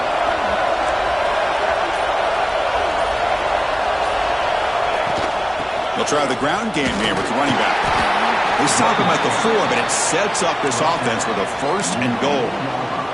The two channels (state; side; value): identical; both; correlation 1.00